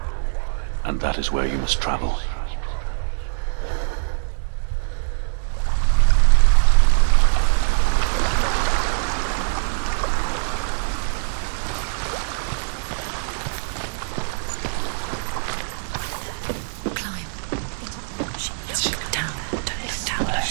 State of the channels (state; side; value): silent; left; digital silence